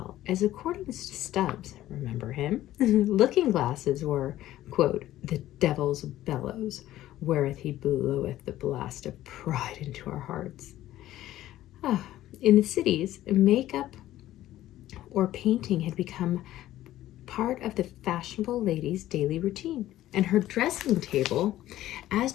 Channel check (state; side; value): quieter; right; 14.2 dB